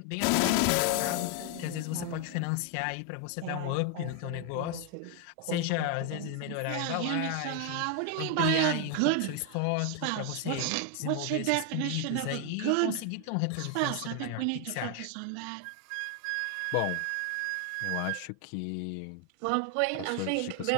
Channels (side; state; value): both; different; correlation 0.01